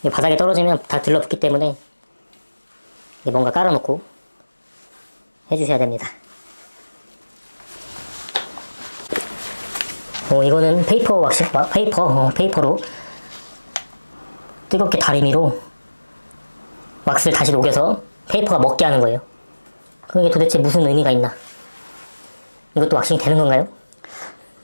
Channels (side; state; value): both; inverted; correlation -1.00